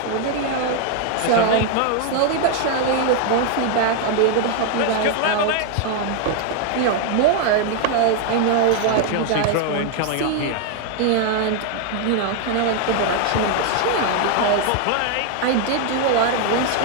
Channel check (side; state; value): both; different; correlation 0.00